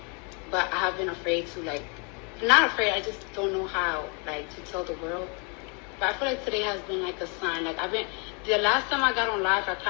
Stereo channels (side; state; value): right; quieter; 34.9 dB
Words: but I have been afraid to not afraid. I just don't know how to tell the world. But I feel like today has been like a sign. The last time I got on live, I